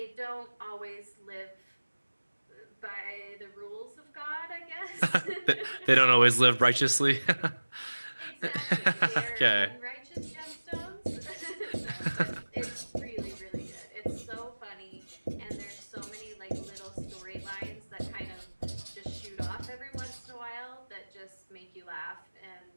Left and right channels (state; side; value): inverted; both; correlation -1.00